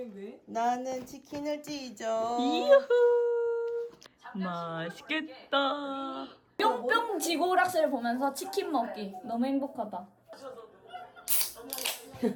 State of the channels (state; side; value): identical; both; correlation 1.00